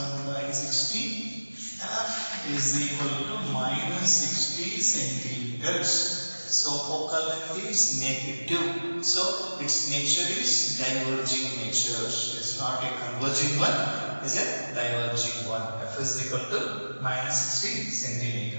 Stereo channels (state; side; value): inverted; both; correlation -1.00